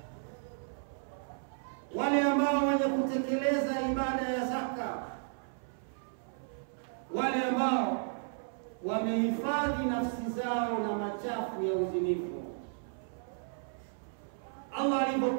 Wale ambao wenye kutekeleza ibada ya zaka, wale ambao wamehifadhi nafsi zao na machafu ya uzinifu. Allah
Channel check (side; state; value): left; silent; 55 dB below the other